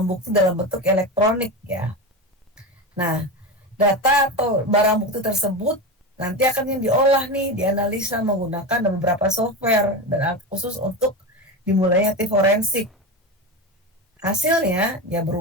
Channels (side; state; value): both; normal; correlation 0.21